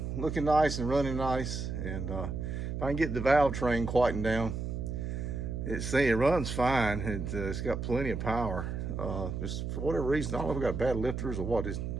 looking nice and running nice. And if I can get the valve train quietened down, it runs fine. It's got plenty of power. Just for whatever reason, I don't know if I got bad lifters or what.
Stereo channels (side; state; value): right; noise; hum, 4 dB below the sound